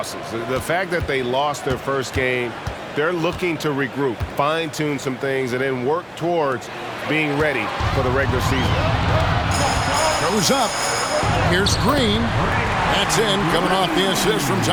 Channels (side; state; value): both; identical; correlation 1.00